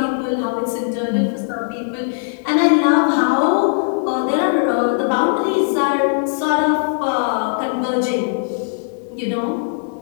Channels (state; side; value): silent; right; 67 dB below the other